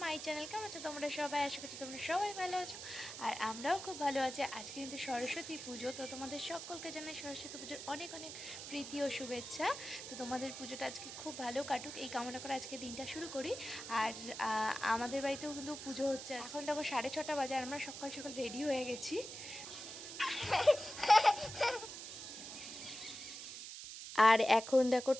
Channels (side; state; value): right; noise; hiss, 9 dB below the sound